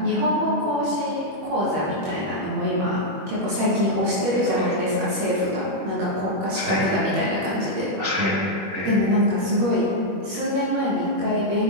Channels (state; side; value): late; left; 21 ms